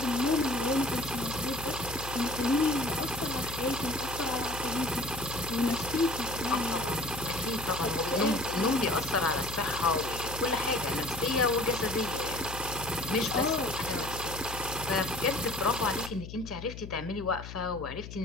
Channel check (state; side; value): noise; left; hum, 11 dB below the sound